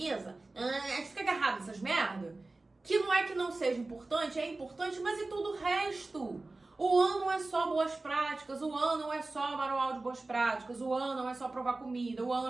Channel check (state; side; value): quieter; left; 3.2 dB